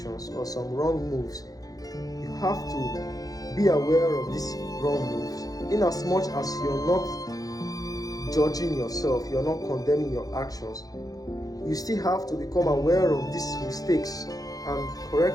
or some wrong moves, you have to be aware of these wrong moves. In as much as you're not judging yourself, you're not condemning your actions, you still have to become aware of these mistakes and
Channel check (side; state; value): right; late; 0.18 ms